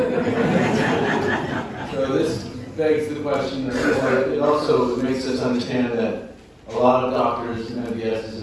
So this begs the question, it also makes us understand that a lot of doctors, MDSs,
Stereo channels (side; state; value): both; identical; correlation 1.00